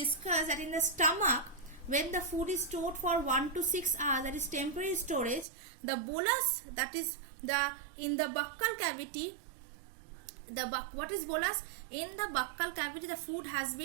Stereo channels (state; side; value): drops out; left; at 5.5 s